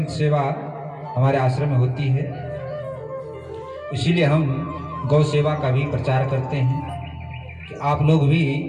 सेवा हमारे आश्रम में होती है, इसीलिए हम गौ सेवा का भी प्रचार करते हैं कि आप लोग भी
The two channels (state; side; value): identical; both; correlation 1.00